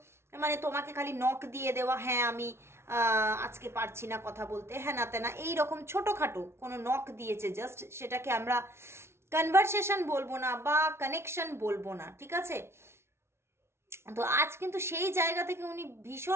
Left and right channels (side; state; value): left; late; 0.12 ms